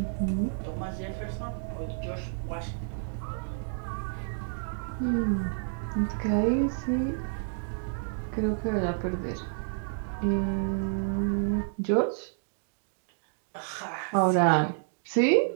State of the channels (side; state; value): left; silent; digital silence